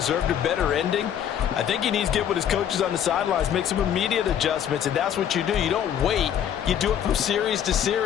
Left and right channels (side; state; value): right; quieter; 9.5 dB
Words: a better ending? I think he needs to get with his coaches on the sidelines, make some immediate adjustments, and that's what you do. You don't wait. You do it from series to